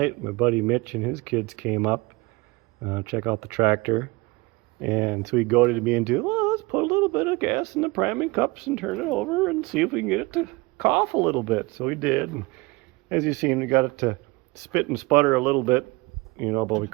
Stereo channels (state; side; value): quieter; left; 24.5 dB